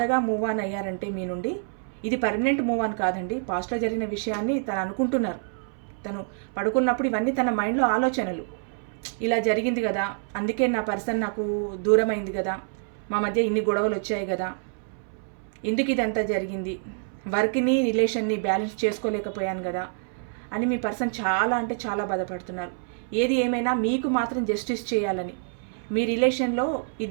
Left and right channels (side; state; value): left; silent; 60 dB below the other